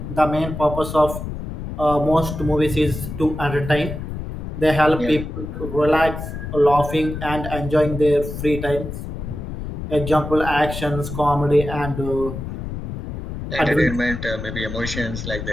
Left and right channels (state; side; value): noise; left; rumble, 7 dB below the sound